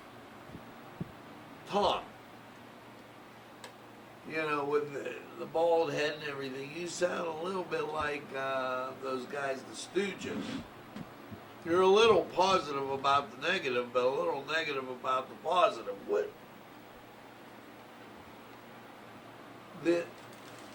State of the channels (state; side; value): identical; both; correlation 1.00